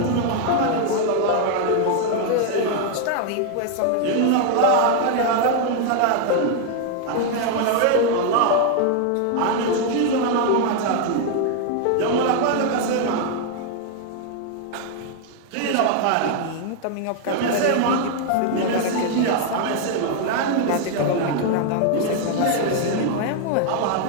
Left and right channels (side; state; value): both; different; correlation 0.00